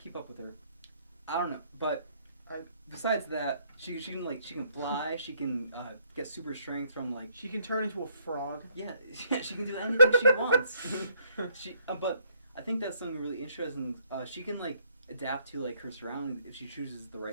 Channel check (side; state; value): both; inverted; correlation -0.67